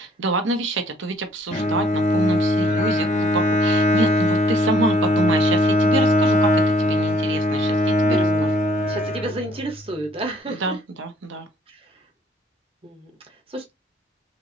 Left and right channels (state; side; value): normal; both; correlation 0.62